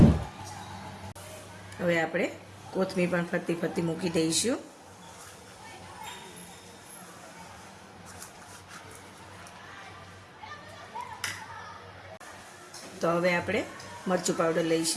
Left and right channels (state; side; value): identical; both; correlation 1.00